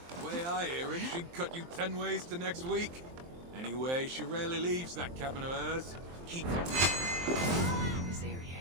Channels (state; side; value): late; left; 23 ms